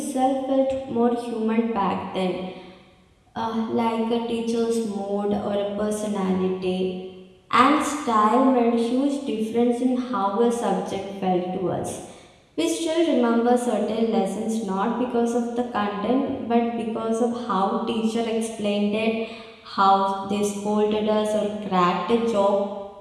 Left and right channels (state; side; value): identical; both; correlation 1.00